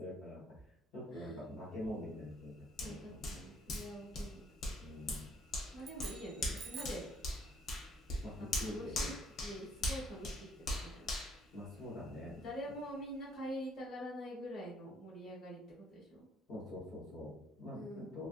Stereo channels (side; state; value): both; normal; correlation 0.65